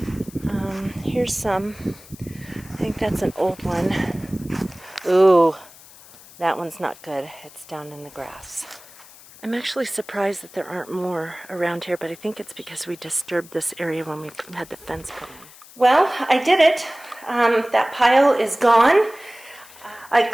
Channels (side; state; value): left; noise; hiss, 21 dB below the sound